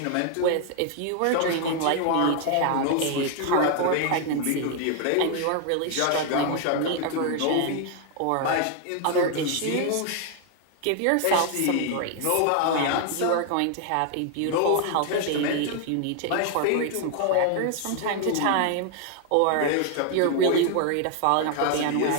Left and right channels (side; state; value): both; different; correlation 0.00